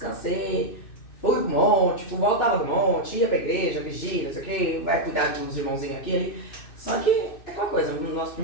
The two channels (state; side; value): late; right; 2.6 ms